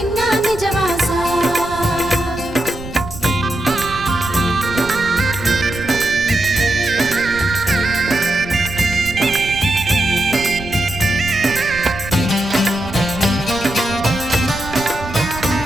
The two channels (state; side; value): noise; right; rumble, 12 dB below the sound